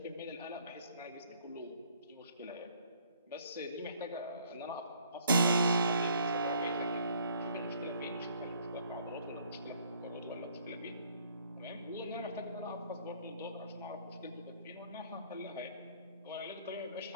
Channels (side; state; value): both; inverted; correlation -0.62